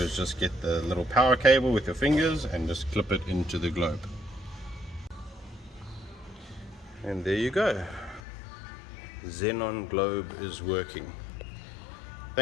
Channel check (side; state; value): right; drops out; at 8.2 s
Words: just get the little power cable with your fingers and just clip it into the globe. And there you go. Xenon globe is working.